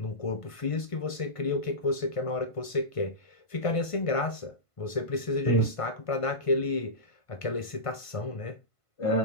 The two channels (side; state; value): right; late; 1.5 ms